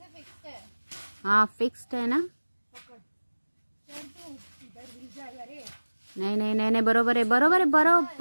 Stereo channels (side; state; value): both; inverted; correlation -1.00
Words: फिक्स्ड है. हाँ फिक्स्ड है ना? नाही नाही नाही नाही, बरोबर आहे बरोबर आहे